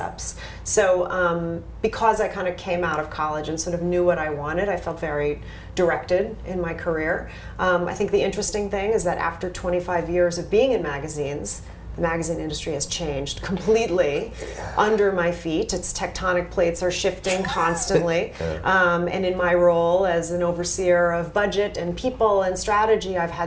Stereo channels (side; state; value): both; identical; correlation 1.00